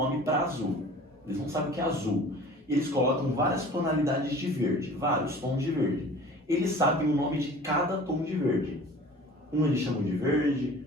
para azul. Eles não sabem o que é azul. Eles colocam várias tonalidades de verde, vários tons de verde. Eles sabem o nome de cada tom de verde. Um eles chamam de verde,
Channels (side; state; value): both; normal; correlation 0.44